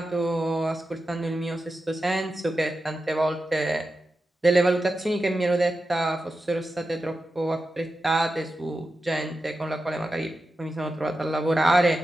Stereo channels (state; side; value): normal; both; correlation 0.91